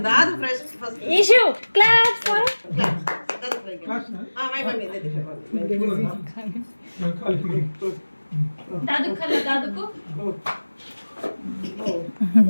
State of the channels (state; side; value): inverted; both; correlation -1.00